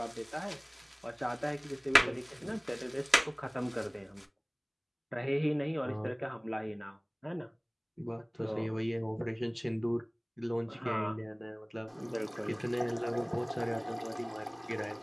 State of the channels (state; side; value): identical; both; correlation 1.00